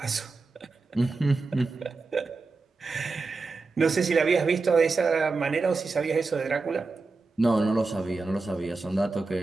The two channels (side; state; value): left; quieter; 3.9 dB